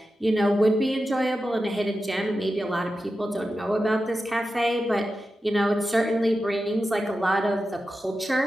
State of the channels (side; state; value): both; normal; correlation 0.91